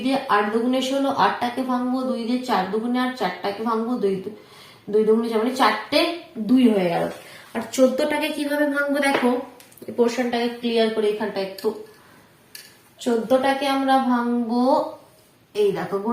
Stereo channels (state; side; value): identical; both; correlation 1.00